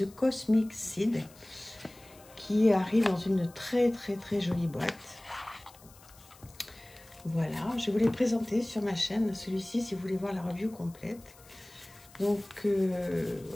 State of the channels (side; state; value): left; noise; hiss, 24 dB below the sound